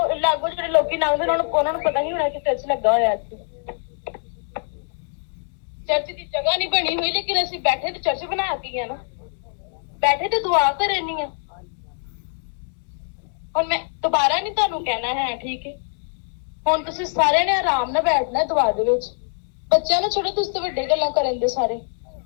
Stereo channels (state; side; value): silent; right; 61 dB below the other